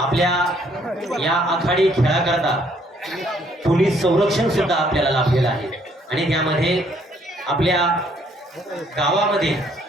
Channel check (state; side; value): normal; both; correlation 0.66